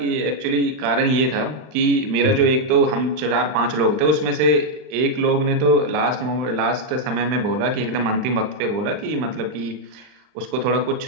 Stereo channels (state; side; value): late; left; 39 ms